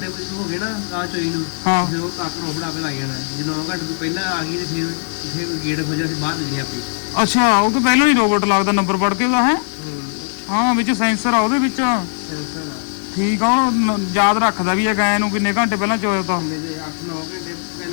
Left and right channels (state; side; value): silent; right; 67 dB below the other